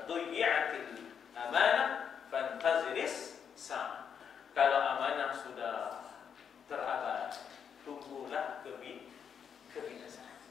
dhuyyatil amanah fantaziris sa. Kalau amanah sudah terabaikan, tunggulah kebinasaan.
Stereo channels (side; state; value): right; quieter; 7.5 dB